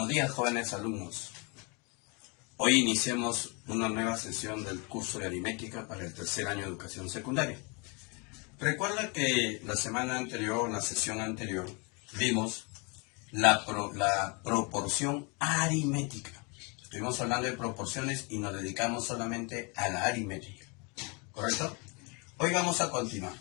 Buenos días, jóvenes alumnos. Hoy iniciamos una nueva sesión del curso de aritmética para el tercer año de educación secundaria. Recuerda que la semana anterior, la sesión anterior, vimos la proporción aritmética. Estuvimos hablando de proporciones y nos dedicamos solamente a la aritmética. ¿Correcto? Hoy vamos a continuar.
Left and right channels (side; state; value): right; quieter; 31.6 dB